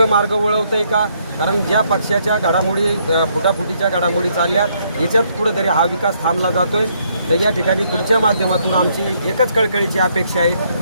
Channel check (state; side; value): inverted; both; correlation -0.71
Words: मार्ग वळवतं आहे का? कारण ज्या पक्षाच्या घडामोडी फुटाफुटीच्या घडामोडी चालल्यात याच्यात कुठंतरी हा विकास थांबला जातोय. तर या ठिकाणी तुमच्या माध्यमातून आमची एकच कळकळीची अपेक्षा आहे,